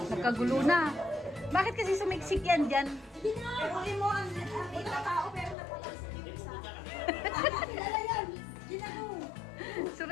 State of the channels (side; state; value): right; drops out; at 5.6 s